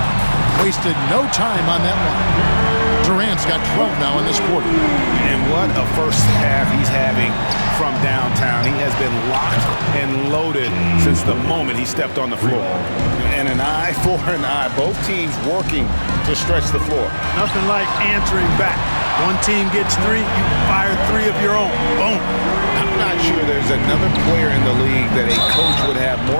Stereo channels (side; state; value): both; inverted; correlation -1.00